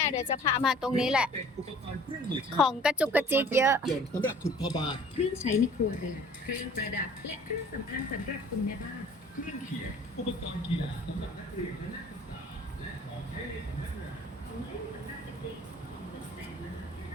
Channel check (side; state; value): both; normal; correlation 0.50